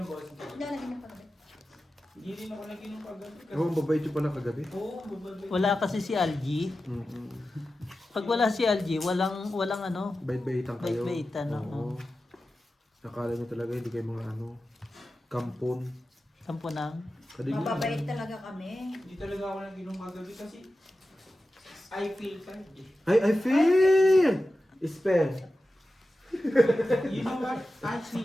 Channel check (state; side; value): normal; both; correlation 0.93